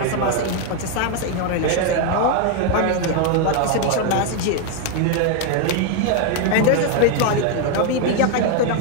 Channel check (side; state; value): both; different; correlation 0.01